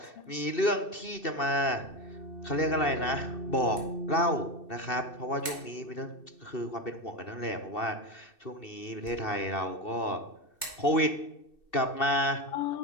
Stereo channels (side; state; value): right; late; 2.6 ms